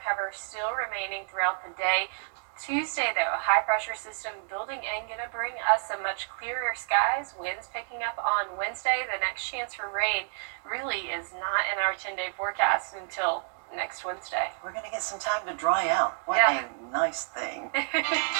cover still remaining throughout the day. Tuesday, though, a high-pressure system building in, going to bring us some much clearer skies. Winds picking up on Wednesday. The next chance for rain really is not in our 10-day forecast until next Wednesday. We're going to get some time to dry out. What Yeah. a nice thing.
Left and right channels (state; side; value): silent; left; 58 dB below the other